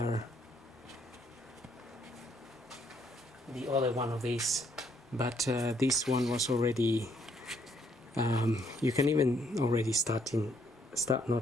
one of these, but this one was already you can even already start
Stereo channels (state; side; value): normal; both; correlation 0.70